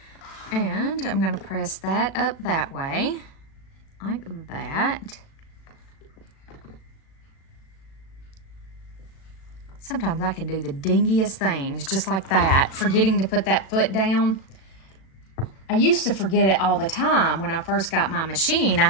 And I'm going to press that up that way, like that. Sometimes I can do the dingiest things, just like that, forgetting to put that foot down. I used to forget it all the time when I first got my machine. I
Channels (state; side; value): late; right; 36 ms